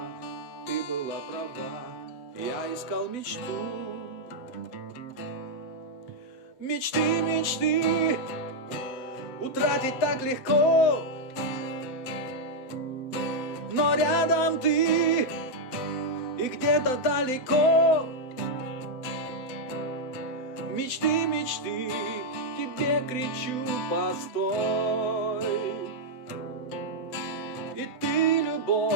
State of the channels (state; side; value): late; right; 7.9 ms